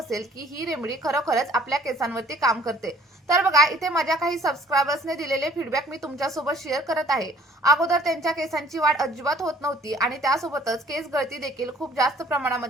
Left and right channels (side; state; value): both; normal; correlation 0.56